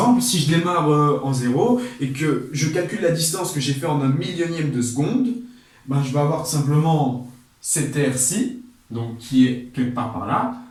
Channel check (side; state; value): both; identical; correlation 1.00